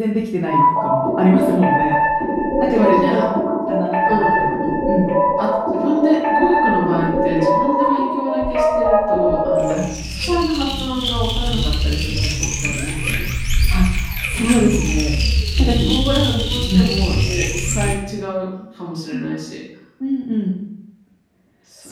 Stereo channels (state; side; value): identical; both; correlation 1.00